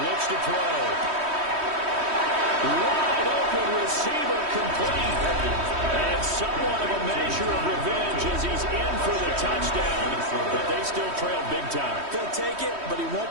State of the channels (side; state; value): left; late; 3.1 ms